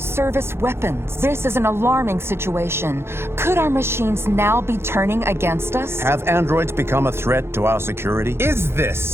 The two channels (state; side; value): late; left; 0.12 ms